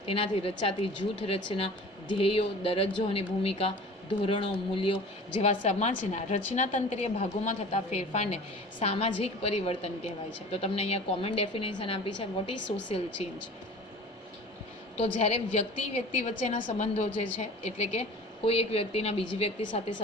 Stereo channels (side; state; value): both; normal; correlation 0.41